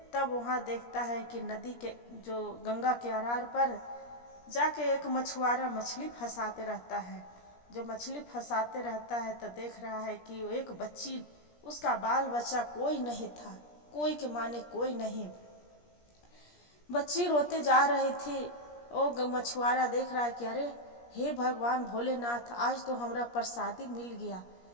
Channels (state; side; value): late; right; 17 ms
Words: तब वहाँ देखता है कि नदी के जो गंगा के अरार पर जाके एक मछुआरा मछली फंसाते रहता है। जो मछली फंसाते रहता है तो देख रहा है कि एक बच्ची, उसका बाल बच्चा कोई नहीं था, कोई के माने कोई नहीं, बच्ची रोते जा रही थी। वो मछुआरा देख रहा है कि अरे हे भगवान भोलेनाथ आज तो हमरा प्रसादी मिल गया,